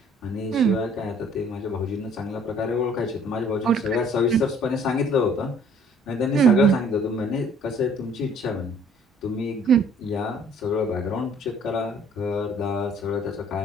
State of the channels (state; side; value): normal; both; correlation 0.56